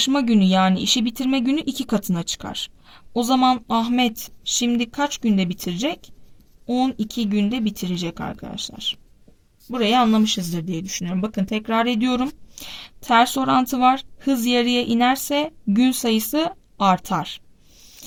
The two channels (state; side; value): identical; both; correlation 1.00